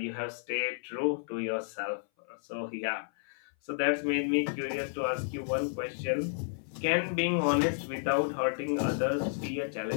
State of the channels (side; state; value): right; silent; 57 dB below the other